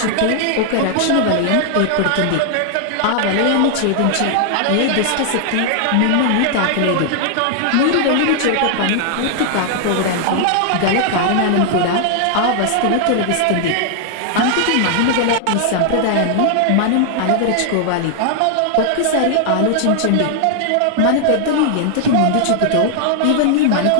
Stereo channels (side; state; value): both; different; correlation 0.00